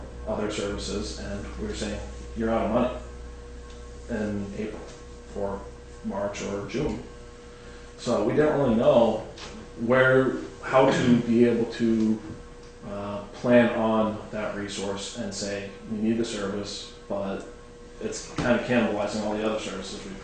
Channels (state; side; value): identical; both; correlation 1.00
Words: other services, and we were saying, you're out of money in April for March or June. So we didn't really know how to be able to plan on that resource and say, we need the service, but it's kind of cannibalizing all the other services we